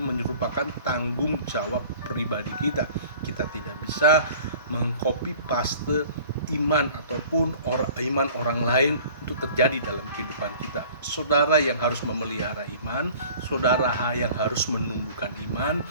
tanggung jawab pribadi kita. Kita tidak bisa mengcopy paste iman ataupun iman orang lain untuk terjadi dalam kehidupan kita. Saudara yang harus memelihara iman, saudara yang harus menumbuhkan iman,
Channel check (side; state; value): both; inverted; correlation -0.48